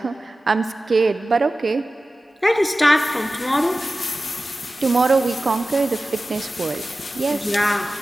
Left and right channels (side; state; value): both; normal; correlation 0.95